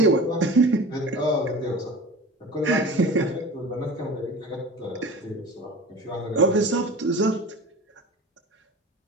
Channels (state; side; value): normal; both; correlation 0.37